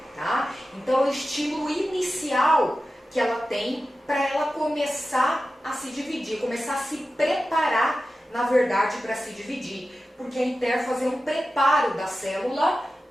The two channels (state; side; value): normal; both; correlation 0.94